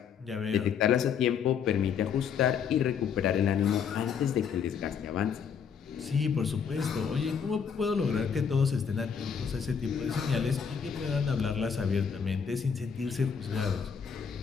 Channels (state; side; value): quieter; right; 6.9 dB